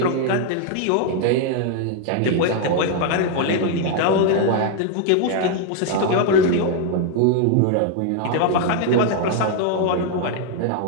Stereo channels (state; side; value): different; both; correlation 0.00